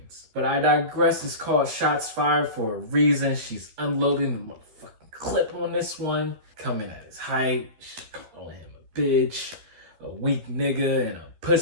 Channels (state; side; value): late; left; 12 ms